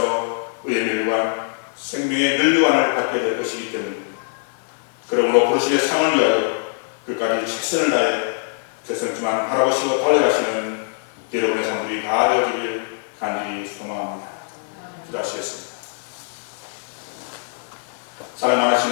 의의 멸관, 생명의 멸류관을 받게 될 것이기 때문입니다. 그러므로 부르심의 상을 위하여 끝까지 최선을 다해 결승점만 바라보시고 달려가시는 여러분의 삶들이 다 되어지길 간절히 소망합니다. 기도하시겠습니다. 사랑하신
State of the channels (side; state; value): right; silent; digital silence